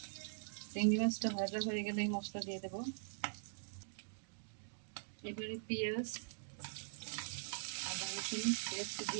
চিংড়ি মাছটা ভাজা হয়ে গেলেই মশলা দিয়ে দেবো। এবারে পেঁয়াজ আদা রসুন পেস্ট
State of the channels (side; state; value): left; silent; digital silence